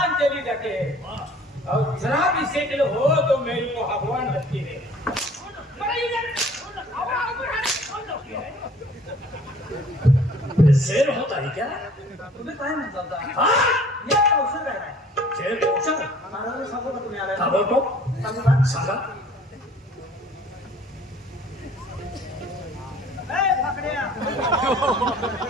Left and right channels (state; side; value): normal; both; correlation 0.52